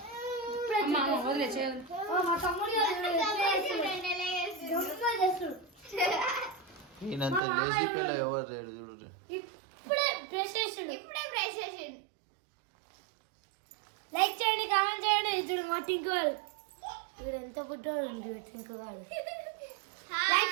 మా తమ్ముడు ఈయనంత లేజీ పిల్ల ఎవరు లేడు చూడు ఇప్పుడే బ్రష్ చేసిండు లైక్ చేయండి కామెంట్ చేయండి చూడు మా టింకుగాడు వీడు ఎంత పుట్టాడు టింకుగాడు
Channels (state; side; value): drops out; left; at 7.4 s